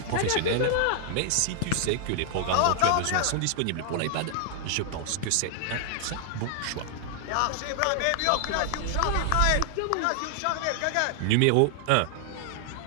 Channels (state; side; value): different; both; correlation 0.00